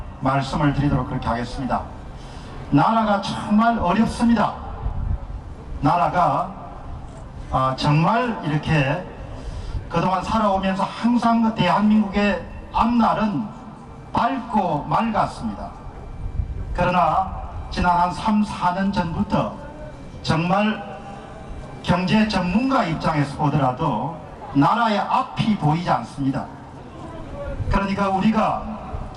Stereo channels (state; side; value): identical; both; correlation 1.00